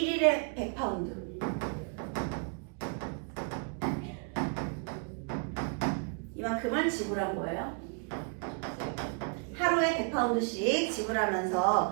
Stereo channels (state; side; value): quieter; left; 39.0 dB